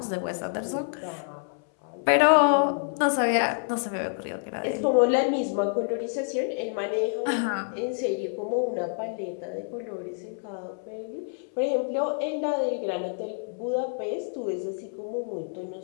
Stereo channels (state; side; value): silent; right; 60 dB below the other